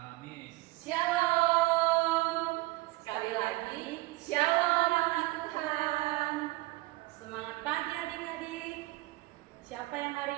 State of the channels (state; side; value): quieter; left; 20.5 dB